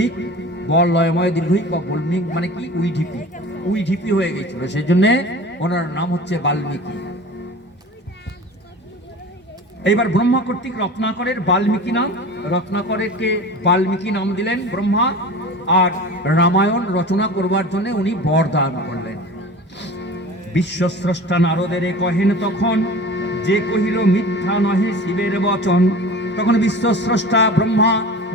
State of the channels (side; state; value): both; normal; correlation 0.37